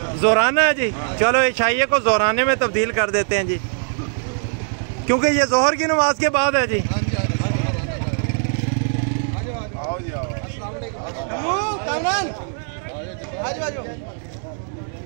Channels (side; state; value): left; silent; 59 dB below the other